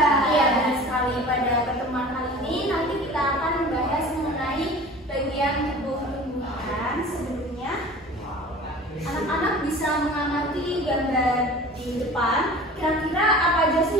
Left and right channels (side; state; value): both; normal; correlation 0.41